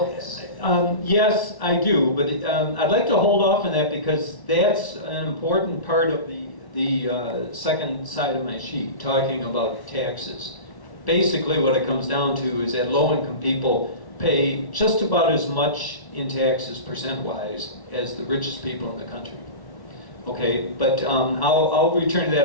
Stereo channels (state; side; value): late; right; 1.1 ms